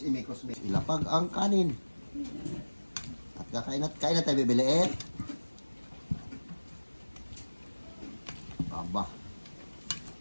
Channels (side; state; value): both; inverted; correlation -1.00